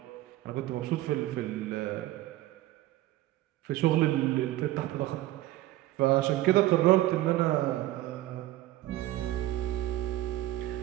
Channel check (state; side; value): quieter; left; 15.6 dB